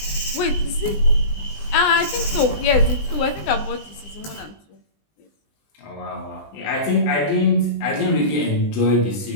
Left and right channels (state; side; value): late; right; 19 ms